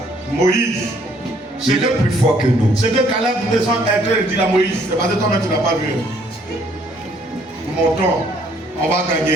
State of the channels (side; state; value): both; normal; correlation 0.64